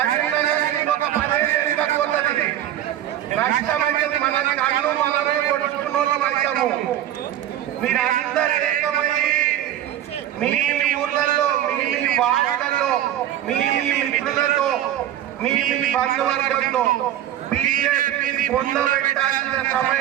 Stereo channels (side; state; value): left; quieter; 12.0 dB